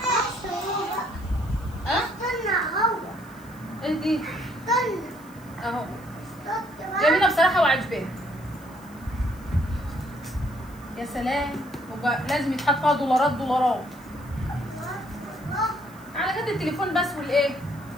ها؟ ايه دي؟ اهو جميله بصراحه وعجباني. يا سلام، لازم يتحط فيها دولارات على قد التليفون بس والايه،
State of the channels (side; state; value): left; noise; hiss, 25 dB below the sound